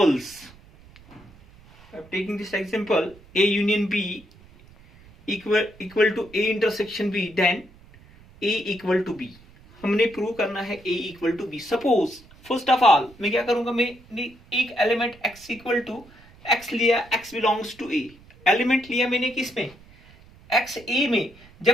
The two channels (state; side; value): noise; right; rumble, 24 dB below the sound